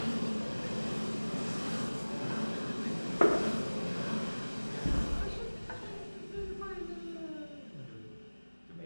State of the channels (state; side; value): inverted; both; correlation -1.00